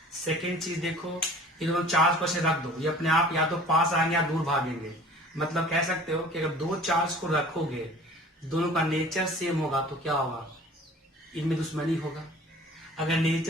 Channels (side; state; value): both; normal; correlation 0.47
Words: सेकेंड चीज देखो, ये दोनों चार्ज को ऐसे रख दो, ये अपने आप या तो पास आएंगे या दूर भागेंगे। मतलब कह सकते हो कि अगर दो चार्ज को रखोगे, दोनों का नेचर सेम होगा तो क्या होगा, इनमें दुश्मनी होगा। अगर